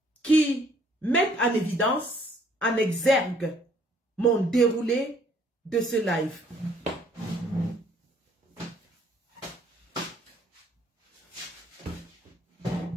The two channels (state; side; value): normal; both; correlation 0.62